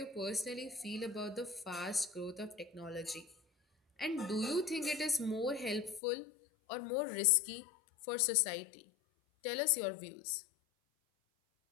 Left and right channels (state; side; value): drops out; right; at 6.0 s